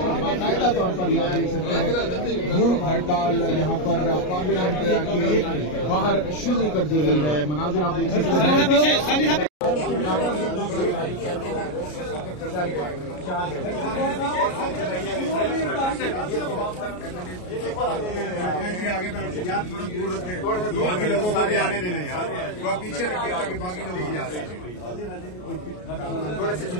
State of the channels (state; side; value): late; right; 33 ms